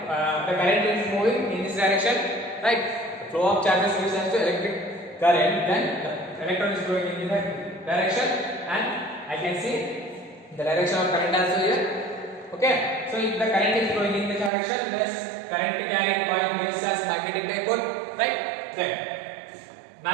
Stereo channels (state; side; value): drops out; left; at 14.5 s